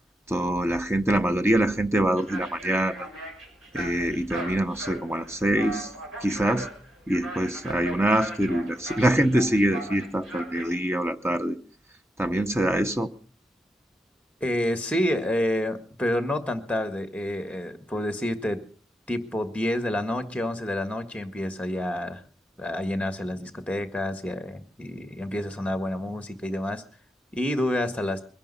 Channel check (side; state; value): both; normal; correlation 0.84